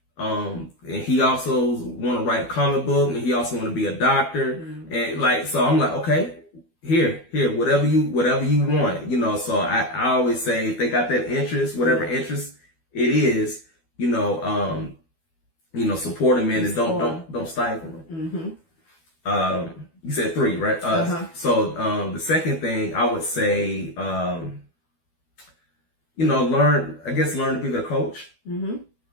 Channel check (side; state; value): right; late; 12 ms